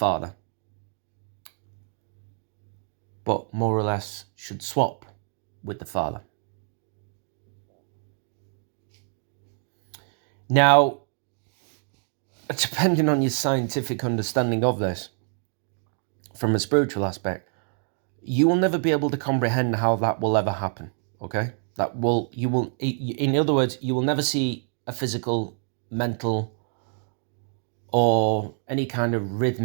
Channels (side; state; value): left; silent; 57 dB below the other